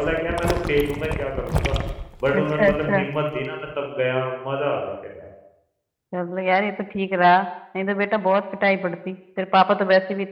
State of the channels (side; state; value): both; identical; correlation 1.00